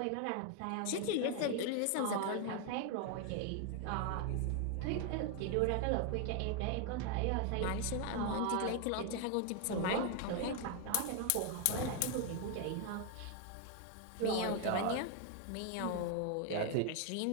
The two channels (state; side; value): different; both; correlation 0.01